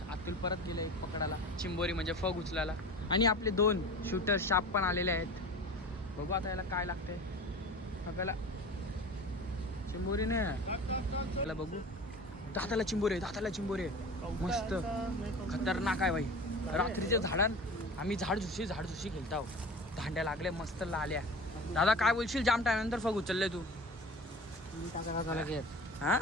अतुल परत गेले पकडायला चिंबोरी म्हणजे फग उचलायला. आणि आपले 2 शूटर शाप पण आलेले आहेत. बघू आता याला काय लागतंय फगाला. चिंबोरी नाही बघू. दाताला चिंबोरे मस्त खतरनाक आहे भाई. रात्रीच्या झाडान आम्ही झाडझुशी खेळत आहोत. दांड्या लागल्या मस्त लाल्या. दादा काय बोलशील. जाम टाइम नंतर फग उचलले तू. हाँ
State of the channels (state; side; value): normal; both; correlation 0.36